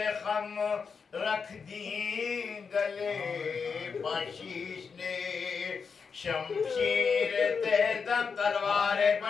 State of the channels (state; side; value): quieter; right; 5.7 dB